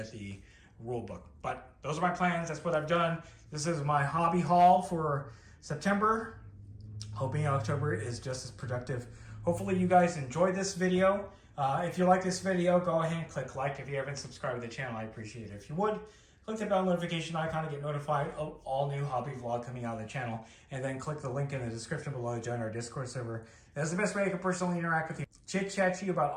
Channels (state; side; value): identical; both; correlation 1.00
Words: the rule book, but those are my plans. That's what I've done. This is my hobby haul for September. Hoping October is just as productive. Hopefully you guys enjoyed this video. If you like this video, go ahead and click like. If you haven't subscribed to the channel, I appreciate it. If you would, click the bell notification icon to get notified of all new hobby vlog coming out of the channel, and then click the link in the description below to join our Discord server. That's the best way I can personally interact with you, chit-chat to you about